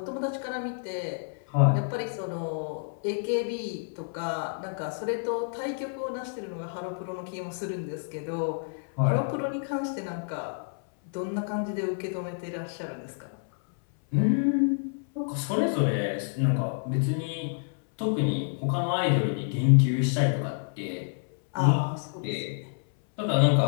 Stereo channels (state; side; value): silent; right; 59 dB below the other